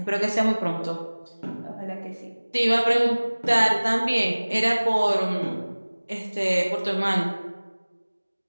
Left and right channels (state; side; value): inverted; both; correlation -1.00